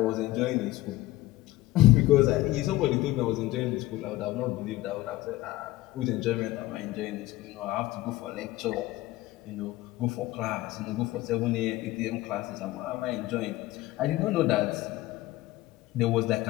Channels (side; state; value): right; quieter; 17.1 dB